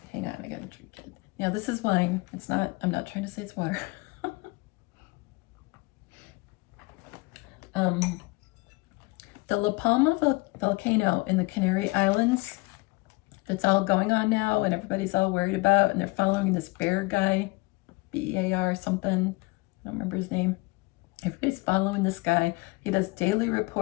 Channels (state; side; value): quieter; right; 24.9 dB